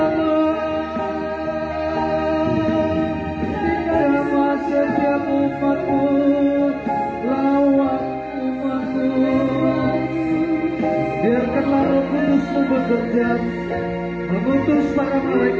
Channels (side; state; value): both; identical; correlation 1.00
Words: pemujaan, mengutus para